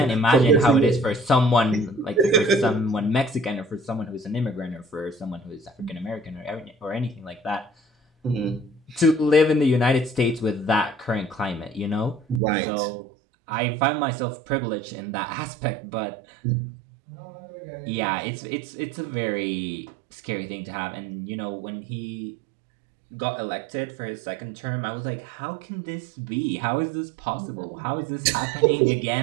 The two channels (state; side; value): drops out; left; at 12.4 s